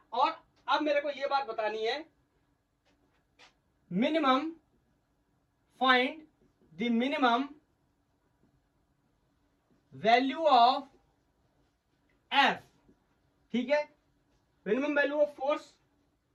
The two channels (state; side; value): identical; both; correlation 1.00